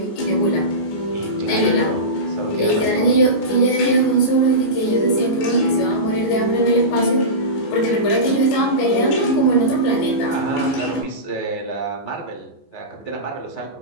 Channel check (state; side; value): late; right; 14 ms